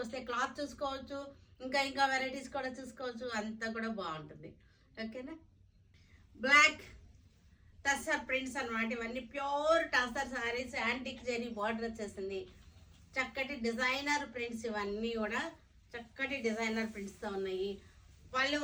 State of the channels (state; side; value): identical; both; correlation 1.00